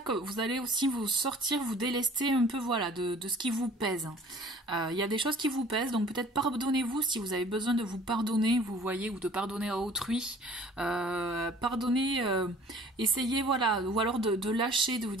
que vous allez aussi vous délester un peu, voilà, de ce qui vous pèse. Il y a des choses qui vous pèsent, donc peut-être pardonnez-vous si vous avez besoin de vous pardonner, vous voyez, ou de pardonner à autrui. Pardonnez, essayez, voilà, ou alors de lâcher, de vous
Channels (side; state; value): both; normal; correlation 0.50